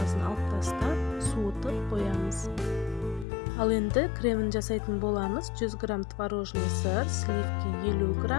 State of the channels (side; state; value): right; drops out; at 3.2 s